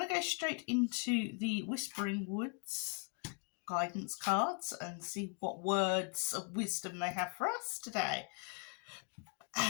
to go straight into the Whispering Woods guidance cards and see what words of wisdom they have for us today.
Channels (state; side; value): quieter; right; 38.9 dB